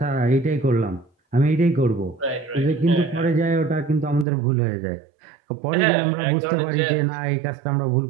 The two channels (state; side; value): drops out; left; at 4.2 s